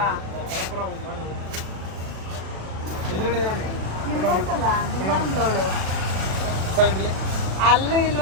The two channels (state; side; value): late; left; 37 ms